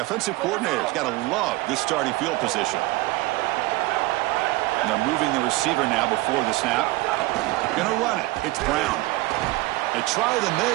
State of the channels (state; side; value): quieter; left; 20.0 dB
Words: offensive coordinator's got to love this starting field position. And they're moving the receiver now before the snap. Gonna run it. It's Brown. They try the